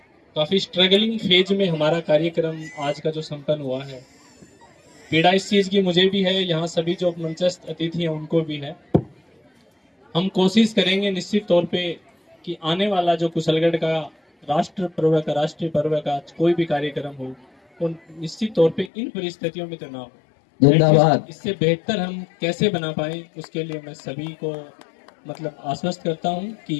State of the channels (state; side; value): drops out; right; at 18.9 s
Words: काफी स्ट्रगलिंग फेज में हमारा कार्यक्रम आज का जो संपन्न हुआ है। पीड़ा इस चीज की मुझे भी है, यहाँ सभी जो मंचस्थ अतिथि हैं उनको भी है। हम कोशिश करेंगे निश्चित तौर पे कि आने वाला जो कुशलगढ़ का राष्ट्रीय पर्व का कोई भी कार्यक्रम हो, तो निश्चित तौर पे इन परिस्थितियों में तो ना हो। जिंदाबाद। इससे बेहतर हम कैसे बना पाए, उसके लिए मैं सभी को मतलब आश्वस्त करता हूं